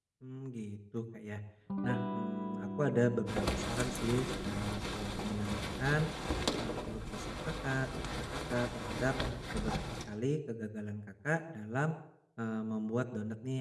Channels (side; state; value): both; identical; correlation 1.00